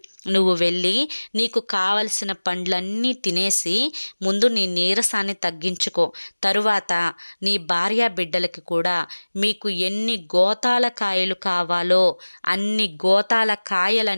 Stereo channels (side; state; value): both; inverted; correlation -1.00